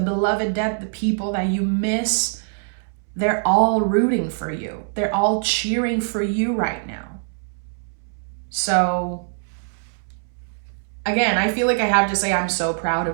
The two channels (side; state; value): left; silent; 64 dB below the other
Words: beloved dead, the people that you miss, they're all rooting for you. They're all cheering for you right now. So again, I feel like I have to say I'm so proud